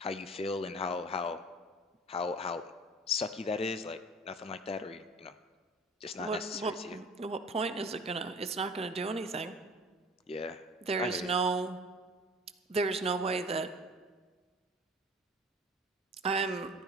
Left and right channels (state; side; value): normal; both; correlation 0.42